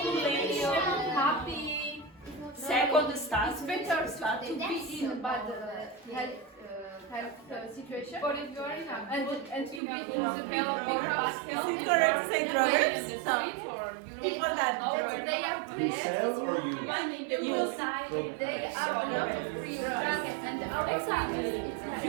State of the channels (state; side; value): drops out; left; at 9.8 s